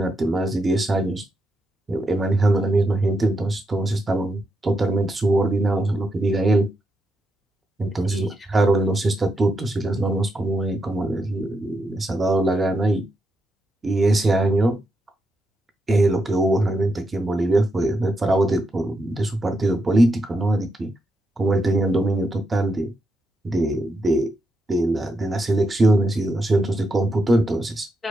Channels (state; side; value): normal; both; correlation 0.83